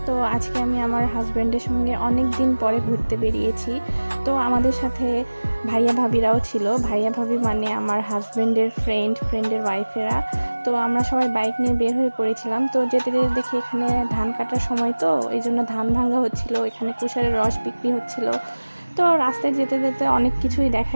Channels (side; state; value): both; inverted; correlation -1.00